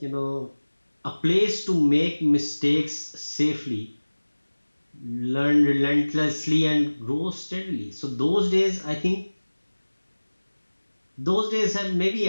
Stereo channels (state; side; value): inverted; both; correlation -1.00